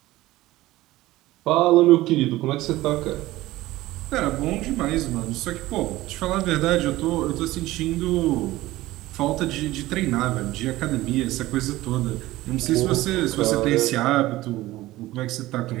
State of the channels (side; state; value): left; quieter; 17.2 dB